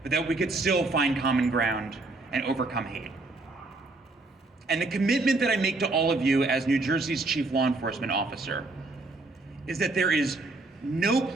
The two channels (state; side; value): quieter; left; 3.2 dB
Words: but that we could still find common ground and overcome hate. And the commitment that I make to all of you as New Jersey's chief law enforcement officer is that there is no